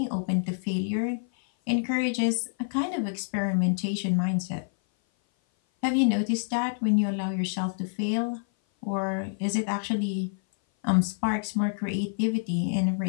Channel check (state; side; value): silent; right; 56 dB below the other